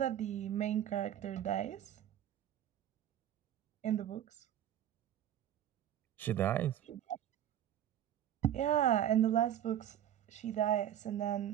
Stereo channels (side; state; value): left; quieter; 11.0 dB